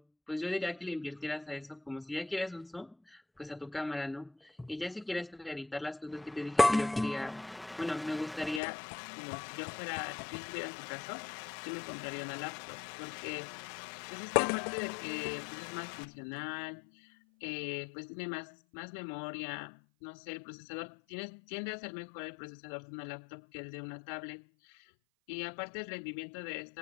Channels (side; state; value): right; drops out; at 8.6 s